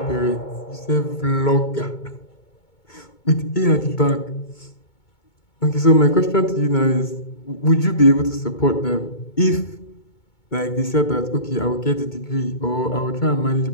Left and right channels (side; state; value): right; late; 2.2 ms